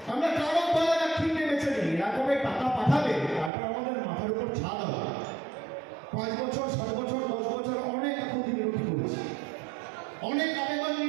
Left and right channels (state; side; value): drops out; left; at 3.5 s